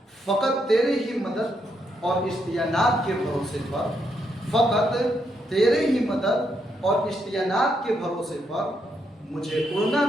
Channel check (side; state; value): both; normal; correlation 0.78